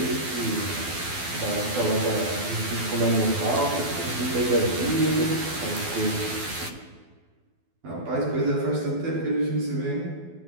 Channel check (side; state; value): left; late; 12 ms